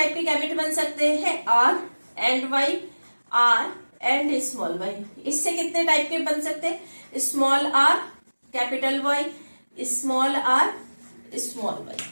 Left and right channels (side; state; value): both; inverted; correlation -1.00